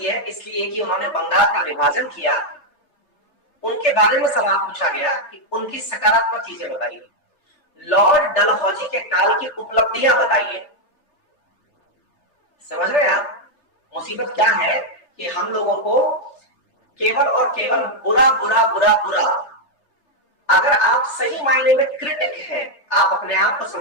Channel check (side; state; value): right; late; 3.3 ms